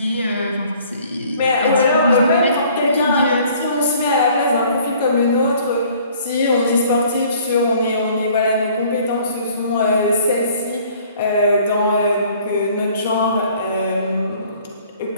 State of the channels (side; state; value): both; inverted; correlation -0.56